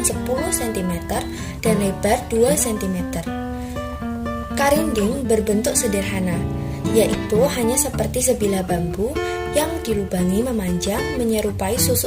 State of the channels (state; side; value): identical; both; correlation 1.00